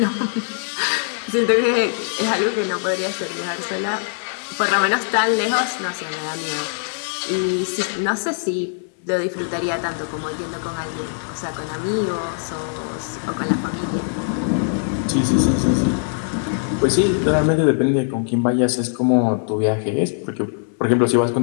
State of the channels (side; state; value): right; silent; 65 dB below the other